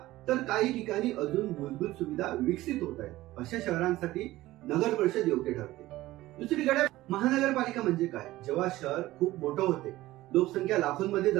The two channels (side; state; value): left; quieter; 16.9 dB